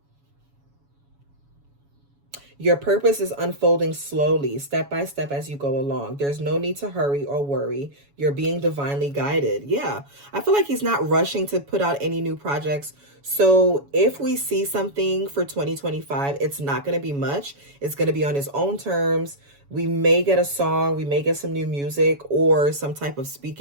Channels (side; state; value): left; late; 7.1 ms